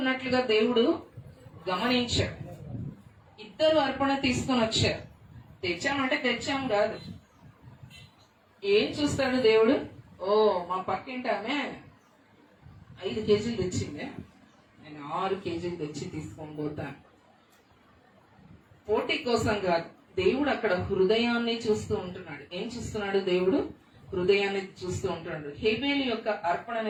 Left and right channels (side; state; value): both; identical; correlation 1.00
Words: దేవుడు గమనించాడు. ఇద్దరు అర్పణ తీసుకొని వచ్చారు. తెచ్చామంటే తెచ్చాం కాదు. ఏం చూస్తాడు దేవుడు? ఓ మా పక్కింటి ఆమె 5 కేజీలు తెచ్చిందే, నేను 6 కేజీలు తెచ్చి తీసుకొని పోతాను. పోటీ కోసం కాదు, దేవుడు అక్కడ హృదయాన్ని చూస్తూ ఉంటున్నాడు. ఏం చూస్తున్నాడు దేవుడు? హృదయాన్ని చూస్తూ ఉంటున్నాడు. హేబేలు యొక్క